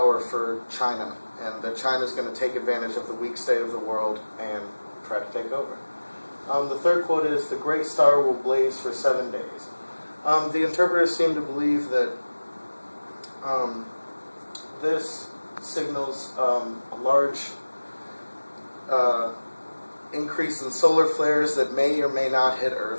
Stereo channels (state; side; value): inverted; both; correlation -1.00